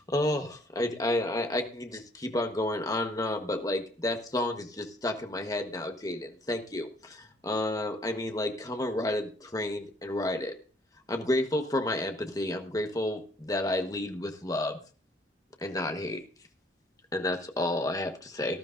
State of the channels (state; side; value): normal; both; correlation 0.61